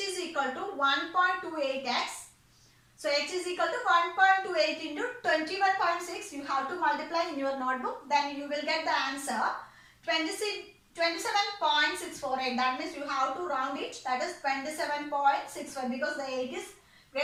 equal to 1.28x. So h is equal to 1.28 into 21.6. You have to multiply in your notebook. Then you will get the answer 27.648. That means you have to round it. That is 27.65 because the 8 is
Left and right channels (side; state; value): both; identical; correlation 1.00